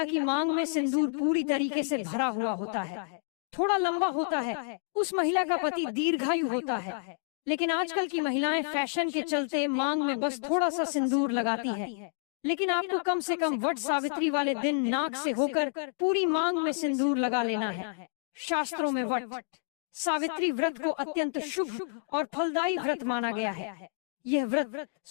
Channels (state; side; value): silent; right; digital silence